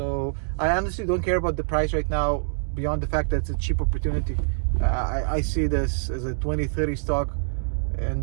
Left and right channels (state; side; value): silent; left; digital silence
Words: I honestly don't care about the price right now beyond the fact that it's a cheap opportunity. I see this as a 2030 stock,